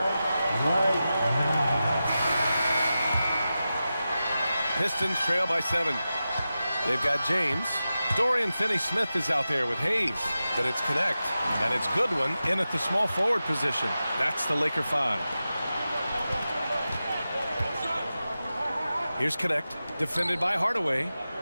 now. Pistons trail by 7. They've got James. Dorian Finney-Smith is out there with Hayes. Then it's Connect. And it's Goodwin in at the small forward position. That's the Laker 5. Here's Connect. Defended by Hardaway.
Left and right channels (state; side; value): inverted; both; correlation -0.93